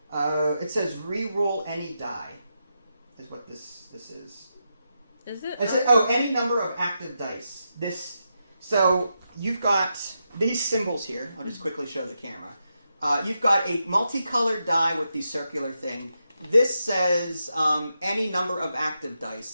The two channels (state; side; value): inverted; both; correlation -0.85